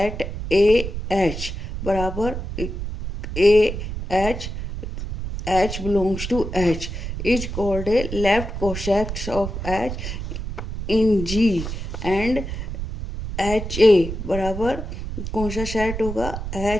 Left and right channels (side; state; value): right; noise; rumble, 6 dB below the sound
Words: AH बराबर AH H belongs to H is called a left cosex of H in G and HA बराबर कौन सा सेट होगा?